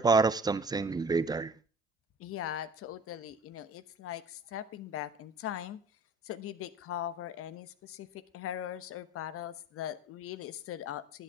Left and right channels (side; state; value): both; normal; correlation 0.46